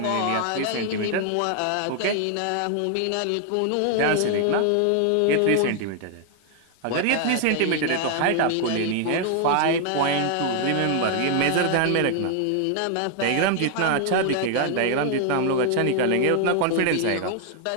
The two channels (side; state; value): both; different; correlation 0.00